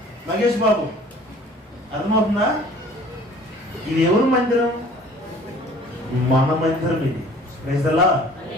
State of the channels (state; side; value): normal; both; correlation 0.50